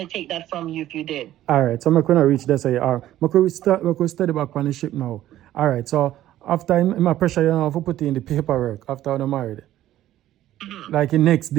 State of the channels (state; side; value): quieter; left; 13.4 dB